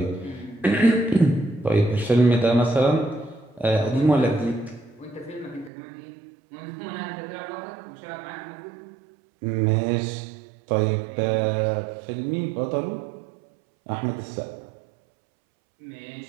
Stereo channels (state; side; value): drops out; left; at 5.7 s